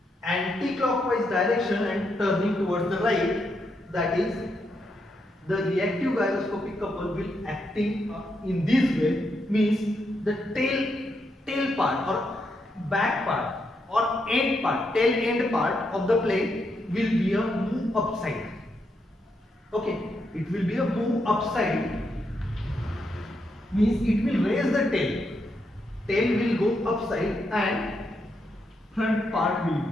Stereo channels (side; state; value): both; normal; correlation 0.81